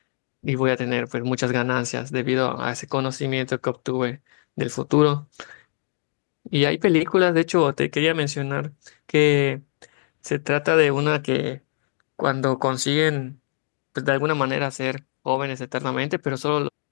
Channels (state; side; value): silent; right; 63 dB below the other